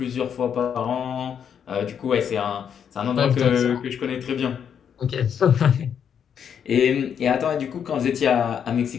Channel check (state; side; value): quieter; right; 8.0 dB